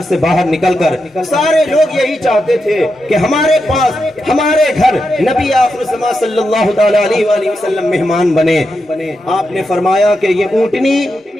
سے باہر نکل کر سارے لوگ یہی چاہتے تھے کہ ہمارے پاس، ہمارے گھر نبی آخر الزمان صلی اللہ تعالی علیہ وآلہ وسلم مہمان بنے۔ آپ نے فرمایا کہ یہ اونٹنی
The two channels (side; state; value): both; normal; correlation 0.86